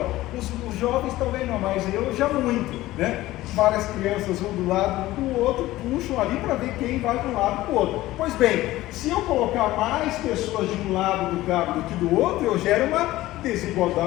Os jovens talvez não, mas eu já muito, né? Várias crianças vão do lado do outro, puxam ali para ver quem vai de um lado para o outro. Pois bem, se eu colocar mais pessoas de um lado do cabo do que do outro, eu gero uma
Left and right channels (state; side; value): quieter; right; 16.6 dB